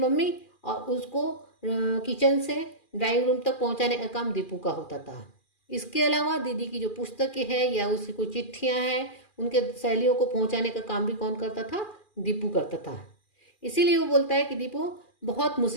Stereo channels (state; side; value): late; right; 2.4 ms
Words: और उसको किचन से ड्राइंग रूम तक पहुंचाने का काम दीपू का होता था। इसके अलावा दीदी की जो पुस्तकें हैं या उसकी कोई चिट्ठियाँ हैं, उनके सहेलियों को पहुंचाने का काम भी कौन करता था? दीपू करता था। इसीलिए वो बोलता है कि दीपू बहुत